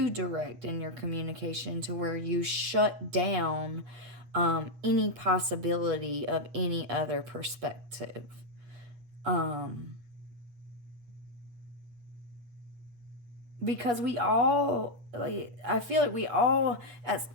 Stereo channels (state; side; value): late; left; 8.4 ms